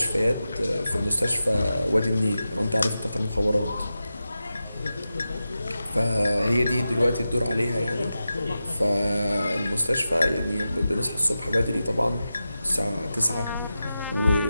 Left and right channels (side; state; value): both; inverted; correlation -0.92